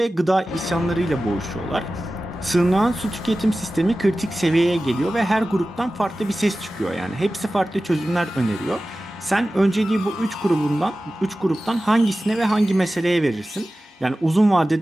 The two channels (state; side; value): normal; both; correlation 0.95